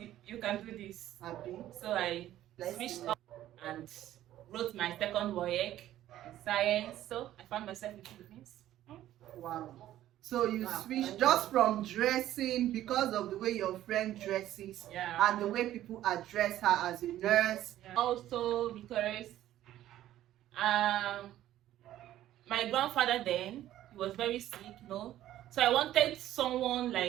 you can do this. Happy? So I switched up and wrote my second WAEC in science. So I found myself in Philippines. Wow. So you switched just from dressing because of the way your friend dresses, Yeah. and the way people address her as a nurse. Yeah. Also because my grandfather then, he was very sick, So I wanted someone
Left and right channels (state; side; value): quieter; left; 13.2 dB